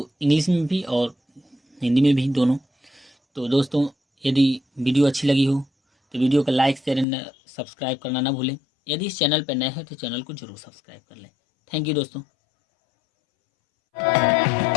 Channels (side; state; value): right; drops out; at 7.1 s